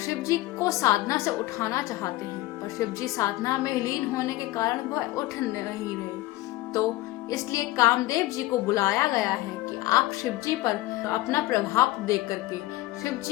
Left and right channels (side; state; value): right; quieter; 17.7 dB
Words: जी को साधना से उठाना चाहते हैं, पर शिव जी साधना में लीन होने के कारण वह उठ नहीं रहे। तो इसलिए कामदेव जी को बुलाया गया है कि आप शिव जी पर अपना प्रभाव दे करके शिव